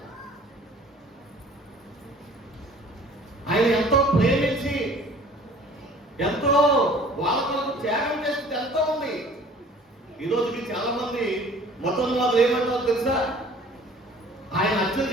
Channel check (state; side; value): normal; both; correlation 0.50